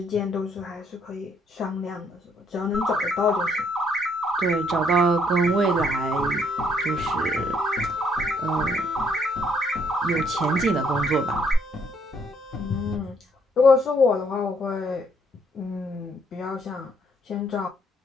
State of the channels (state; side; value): normal; both; correlation 0.68